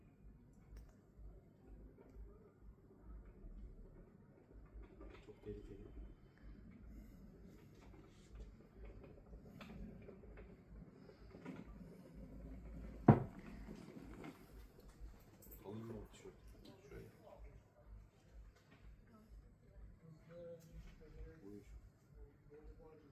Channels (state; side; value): identical; both; correlation 1.00